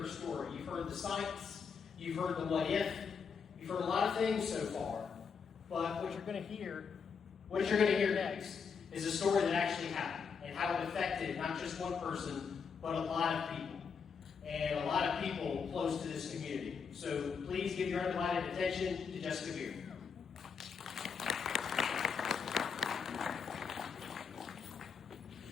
story. You've heard the science, you've heard the what if, you've heard a lot of things so far. But what you're going to hear next is a story that actually happened and how it affected not just one person, but a lot of people. And a lot of people close to this community. So please give your undivided attention to Jessica Beer.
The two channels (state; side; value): quieter; right; 6.0 dB